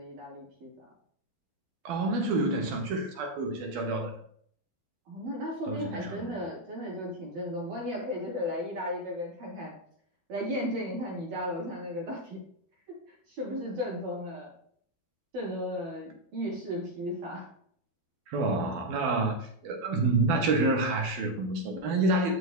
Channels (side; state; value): left; late; 12 ms